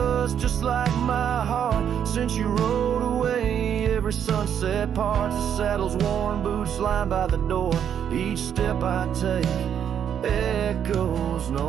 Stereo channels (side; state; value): left; quieter; 8.8 dB